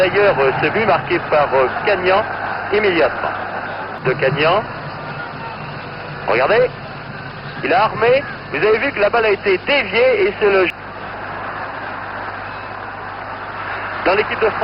ce but marqué par Cagnan immédiatement. De Cagnan. Regardez, il a armé. Vous avez vu que la balle a été déviée et c'est le... Dans l'équipe de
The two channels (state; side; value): identical; both; correlation 1.00